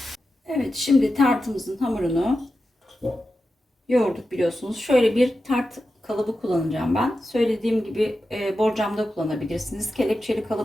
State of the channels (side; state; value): both; normal; correlation 0.91